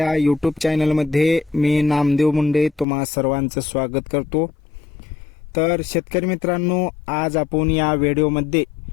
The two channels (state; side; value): drops out; right; at 2.9 s